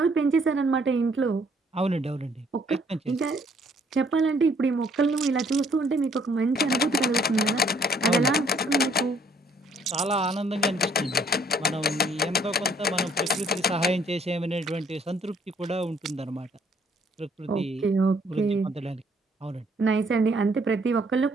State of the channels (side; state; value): both; normal; correlation 0.64